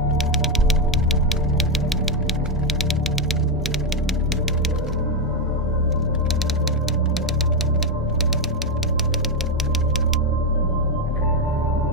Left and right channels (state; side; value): normal; both; correlation 0.05